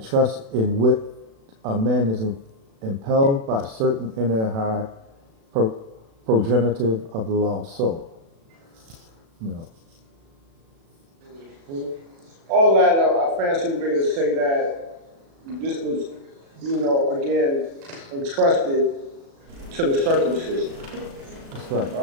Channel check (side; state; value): left; late; 36 ms